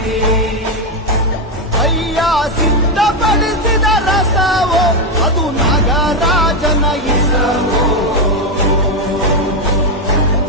ಅಯ್ಯ ಸಿದ್ಧಪಡಿಸಿದ ರಸವೋ ಅದು ನಾಗರಾಜನ ಇಸವೋ,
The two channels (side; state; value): both; normal; correlation 0.06